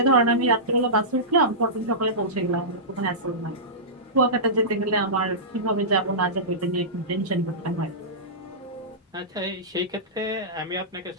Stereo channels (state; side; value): normal; both; correlation -0.17